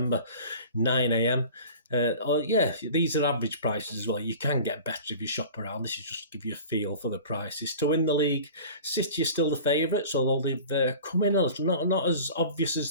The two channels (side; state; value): both; inverted; correlation -0.40